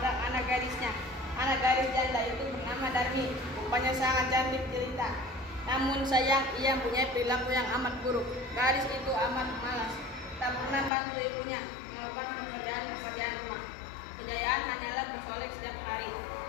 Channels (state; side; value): drops out; right; at 10.9 s